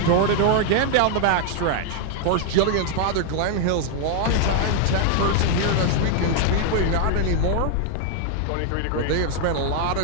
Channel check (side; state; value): both; different; correlation 0.00